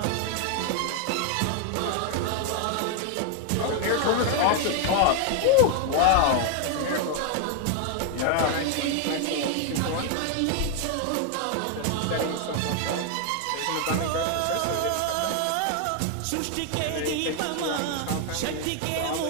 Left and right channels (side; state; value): both; different; correlation 0.00